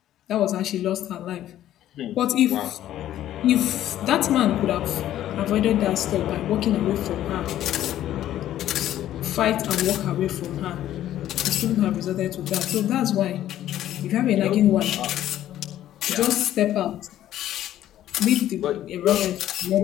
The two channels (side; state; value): right; quieter; 12.5 dB